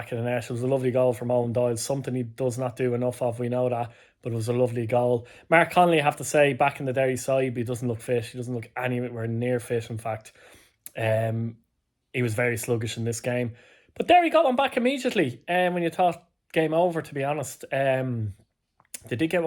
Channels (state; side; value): identical; both; correlation 1.00